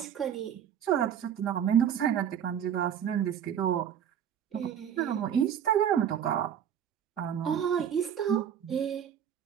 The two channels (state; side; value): quieter; left; 9.0 dB